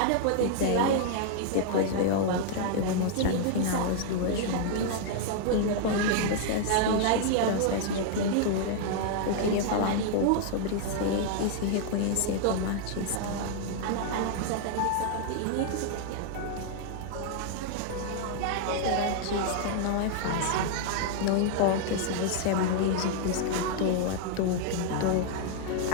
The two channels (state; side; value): different; both; correlation 0.00